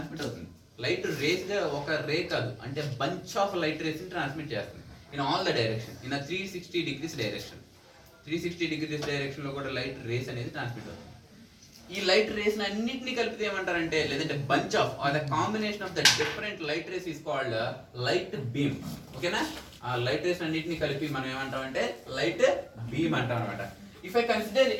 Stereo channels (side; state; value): both; identical; correlation 1.00